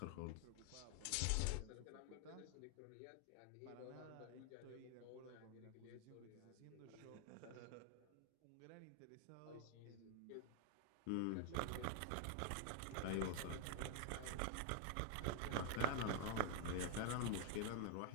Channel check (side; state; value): both; different; correlation 0.00